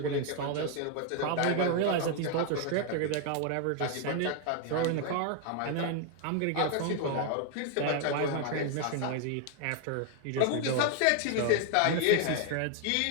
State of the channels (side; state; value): both; different; correlation 0.00